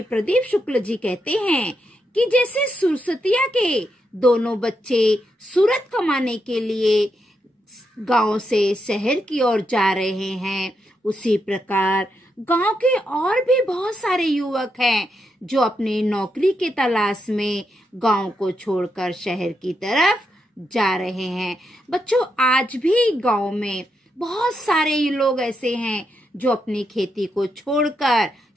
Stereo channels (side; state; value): both; normal; correlation 0.82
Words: प्रदीप शुक्ल जी कहते हैं कि जैसे सुरसतिया के दोनों बच्चे सूरत कमाने के लिए गांव से शहर की ओर जा रहे हैं, उसी प्रकार गांव के और भी बहुत सारे युवक हैं जो अपनी नौकरी के तलाश में गांव को छोड़कर शहर की तरफ जा रहे हैं। बच्चों, आज भी गांव में बहुत सारे लोग ऐसे हैं जो अपनी खेती को छोड़कर